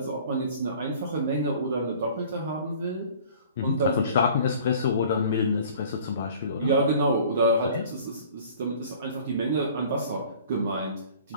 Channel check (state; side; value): inverted; both; correlation -0.48